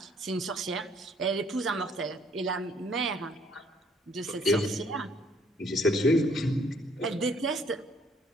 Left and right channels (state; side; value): normal; both; correlation 0.63